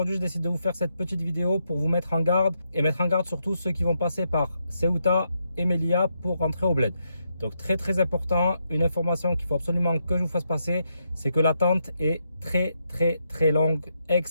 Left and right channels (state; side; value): inverted; both; correlation -0.81